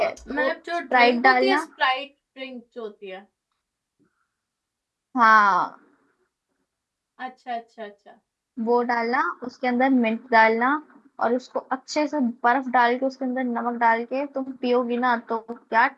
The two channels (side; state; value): both; identical; correlation 1.00